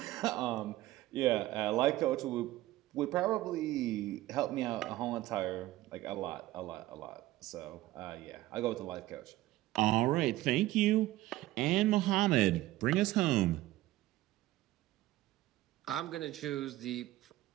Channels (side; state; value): left; quieter; 16.4 dB